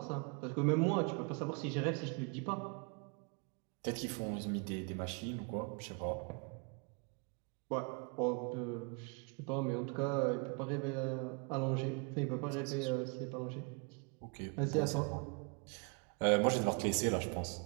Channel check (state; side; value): quieter; left; 34.4 dB